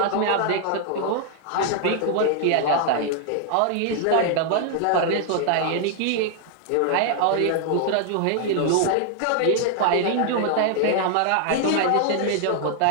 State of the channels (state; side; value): different; both; correlation 0.00